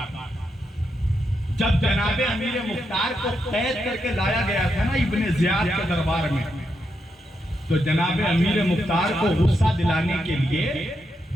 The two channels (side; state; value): both; normal; correlation 0.83